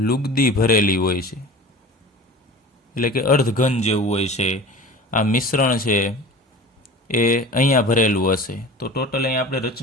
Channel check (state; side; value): normal; both; correlation 0.37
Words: લુગદી ભરેલી હોય છે, એટલે કે અર્ધઘન જેવું હોય છે. આ મિશ્રણ છે એ અહીંયા ભરેલું હશે. તો ટોટલ અહીંયા આપણે